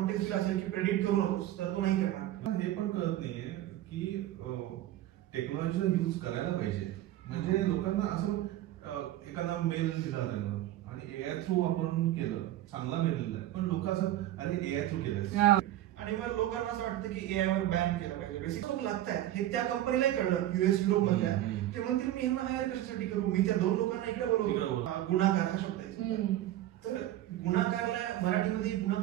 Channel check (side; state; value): left; quieter; 13.7 dB